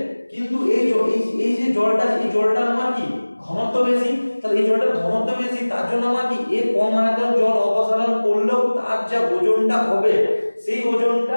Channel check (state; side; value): inverted; both; correlation -1.00